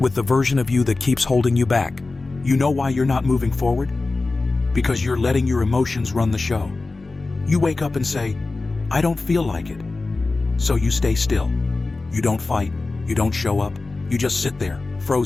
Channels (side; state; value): right; quieter; 3.5 dB